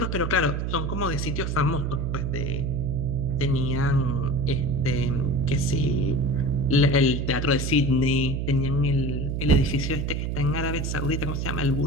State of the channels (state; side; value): noise; right; hum, 1 dB below the sound